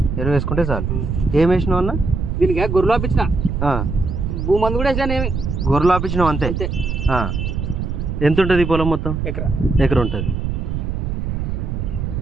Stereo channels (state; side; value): noise; right; rumble, 2 dB below the sound